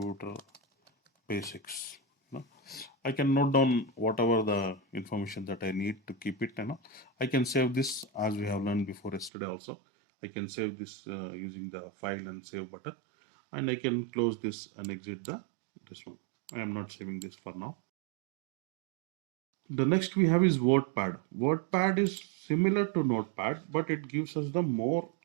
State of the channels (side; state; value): left; drops out; at 9.3 s